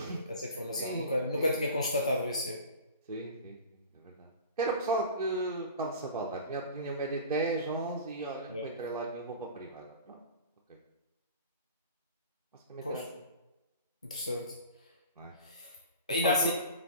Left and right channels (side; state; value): both; inverted; correlation -0.38